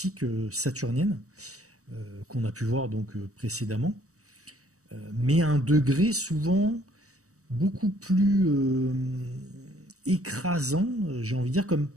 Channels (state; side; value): late; left; 0.65 ms